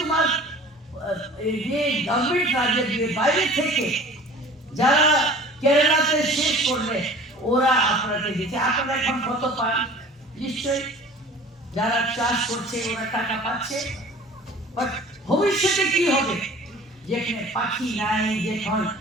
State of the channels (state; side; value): normal; both; correlation 0.45